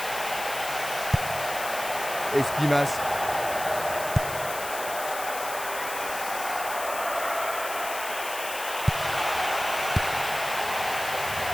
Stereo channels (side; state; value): left; noise; hiss, 8 dB below the sound